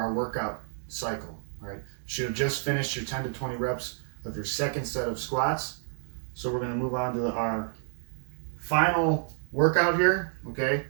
workout cycle, all right? You should have just finished your 10 to 20 reps of your second set of squats. So we're going to move on to our final workout here, okay?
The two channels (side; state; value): left; silent; 58 dB below the other